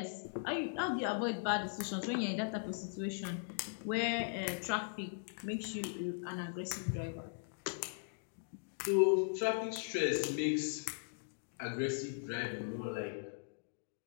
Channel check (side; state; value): right; silent; digital silence